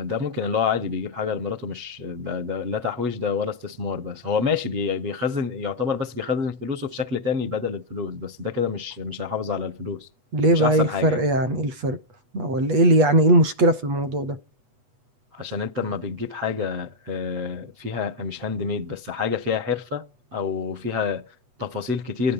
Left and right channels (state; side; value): late; left; 8.2 ms